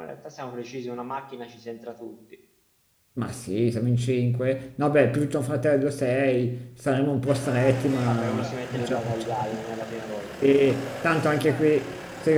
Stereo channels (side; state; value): both; identical; correlation 1.00